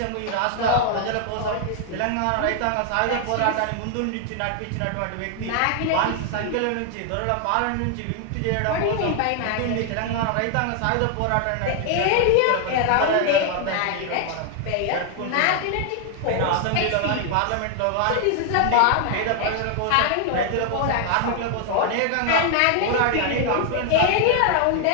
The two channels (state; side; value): different; both; correlation 0.00